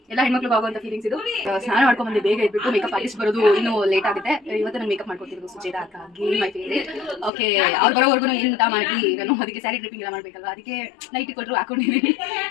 ಎಲ್ಲ ಹೆಣ್ಮಕ್ಳು ಆಗುವಂತ ಫೀಲಿಂಗ್ಸ್ ಇದು. ಸ್ನಾನ ಮಾಡ್ಕೊಂಡು ಬಂದು ಬೇಗ ಇದ್ಬಿಟ್ಟು ಮೇಕಪ್ ಆರ್ಟಿಸ್ಟ್ ಬರೋದು ಇನ್ನೂ ಲೇಟ್ ಆಗುತ್ತೆ. ಇವತ್ತು ನಾನು ಮೇಕಪ್ ಮಾಡ್ಕೊತಿರೋದು ಸುಚೇತಾ ಅಕ್ಕಾಗಿ, ಮೈ ಫೇವರೇಟ್. ಓಕೆ, ಅವ್ರು ಬರೋವರೆಗೂ ಎಂತ ಮಾಡಿ ನಾನು ಅದಕ್ಕೆ ಸ್ಯಾರಿ ಡ್ರಿಪ್ಪಿಂಗ್ ಎಲ್ಲ ಮಾಡ್ಬೇಕಲ್ವಾ, ಅದಕ್ಕೆ ನೈಟ್ ಕೊಟ್ಟರು ಹಾಕೊಂಡಿದ್ದೀನಿ.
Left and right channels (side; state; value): right; drops out; at 7.3 s